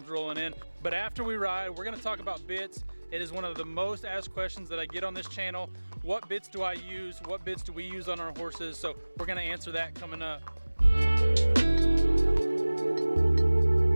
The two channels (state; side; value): inverted; both; correlation -1.00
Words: rolling in. But after we ride, we're gonna talk about bits. It is one of the most asked questions that I get on this channel. What bits do I use? What bits do we use on our horses? So we're gonna answer that coming up.